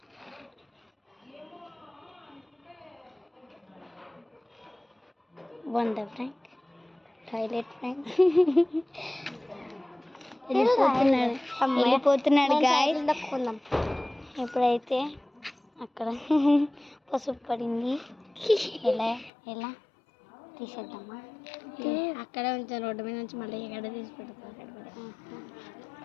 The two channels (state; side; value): drops out; right; at 19.3 s